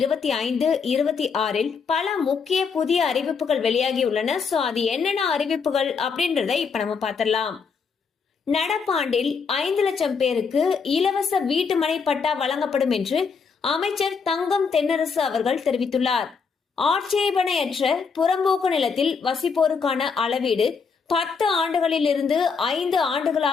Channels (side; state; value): right; quieter; 5.5 dB